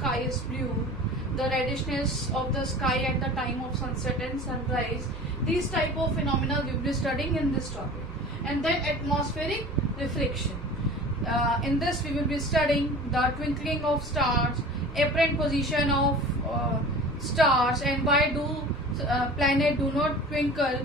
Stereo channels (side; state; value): both; normal; correlation 0.40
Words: is blue, the reddishness of the sky at the time of sunset and sunrise. These type of phenomena we will be studying in this topic. And then atmospheric reflection. In this we will be studying the twinkling of stars, apparent position of stars, and why do planet do not twinkle.